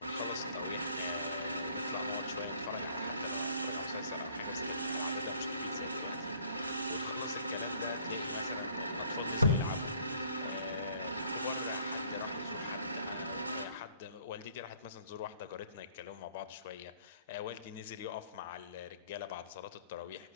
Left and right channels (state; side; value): inverted; both; correlation -0.59